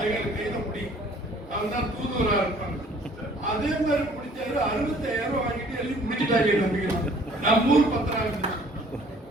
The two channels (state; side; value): normal; both; correlation 0.56